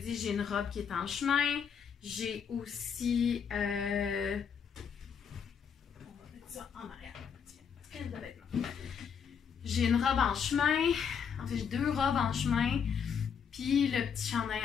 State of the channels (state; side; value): quieter; right; 7.1 dB